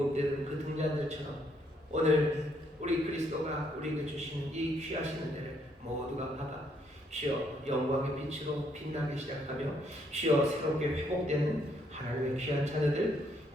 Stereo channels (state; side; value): normal; both; correlation 0.71